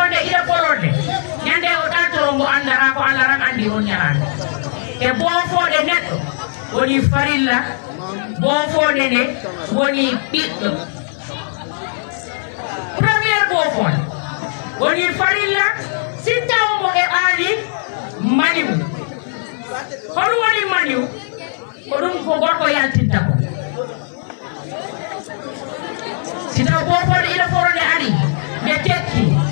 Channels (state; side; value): silent; right; 58 dB below the other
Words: ida polonde nyande o datiro mo andara ko alaram andi on nyarande e bofonde neddo woni farilla bofonde ne woni biddo premier bofonde woni farilla sittaw mo e ali maniw hono woni maniw ko dum ko gorko yaltinta ko sita bofol ida forode ari be tekki